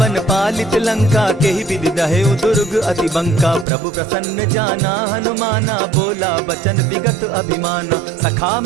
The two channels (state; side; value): drops out; left; at 3.7 s